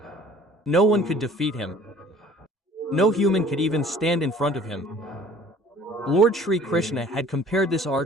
No one could defeat him. No human could even stand in front of him. Lord Sri Krishna had compared this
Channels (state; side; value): normal; both; correlation 0.50